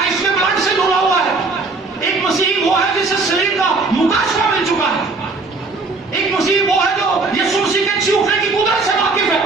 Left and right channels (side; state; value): left; quieter; 3.8 dB